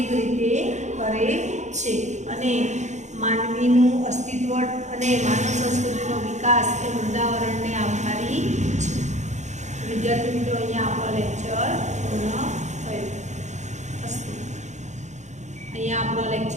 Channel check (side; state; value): left; late; 0.34 ms